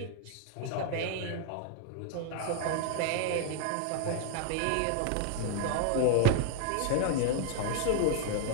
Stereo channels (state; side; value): different; both; correlation 0.00